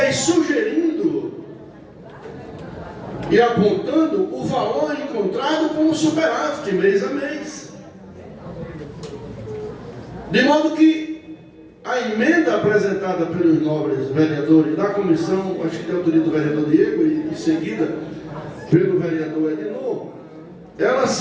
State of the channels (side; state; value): both; identical; correlation 1.00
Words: sugerindo e apontando o valor encontrado como superávit mês a mês. De modo que a emenda apresentada pelos nobres vereadores da comissão, acho que tem autoria do vereador Diego e em seguida pelo vereador Edinor, ela